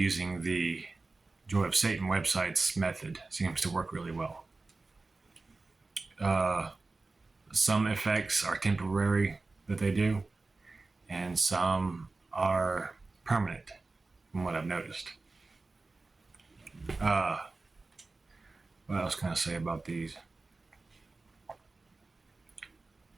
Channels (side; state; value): left; quieter; 3.5 dB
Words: the Joy of Satan website's method seems to work really well. Some effects are temporary that they do, and some are permanent, from what I've noticed. What else can I say about these?